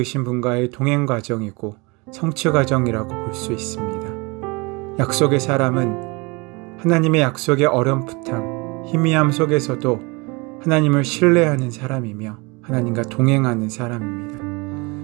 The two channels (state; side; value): quieter; left; 27.3 dB